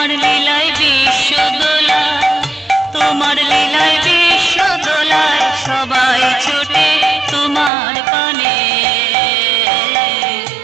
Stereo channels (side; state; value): left; drops out; at 7.7 s